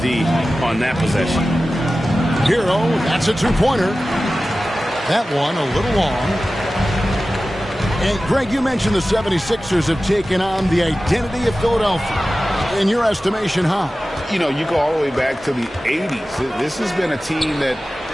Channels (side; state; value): both; normal; correlation 0.95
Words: on that possession. Hero, that's a two-pointer. That one a little long. And, Greg, you mentioned the 76ers have taken on the identity of Philadelphia. In your estimation, how? You know, you go all the way back to the 80s. This has been a team that